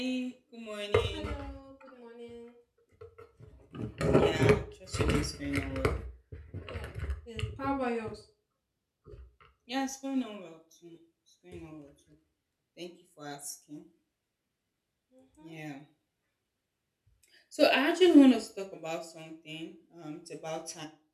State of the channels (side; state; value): both; identical; correlation 1.00